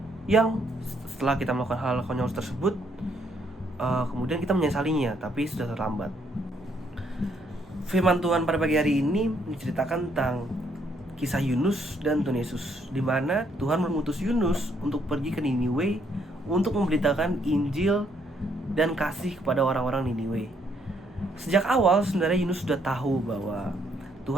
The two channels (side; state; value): both; normal; correlation 0.71